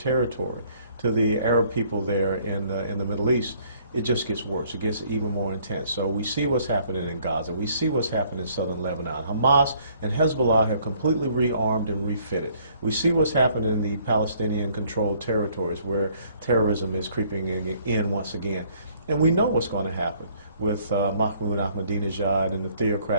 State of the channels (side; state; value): both; inverted; correlation -0.62